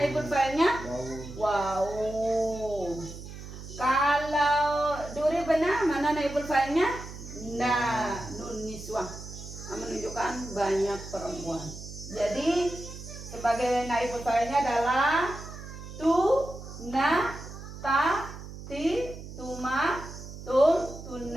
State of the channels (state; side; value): noise; right; hum, 12 dB below the sound